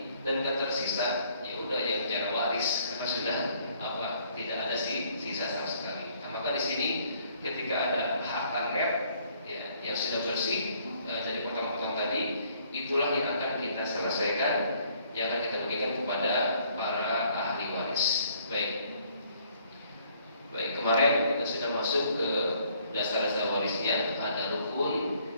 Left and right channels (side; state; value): both; inverted; correlation -0.64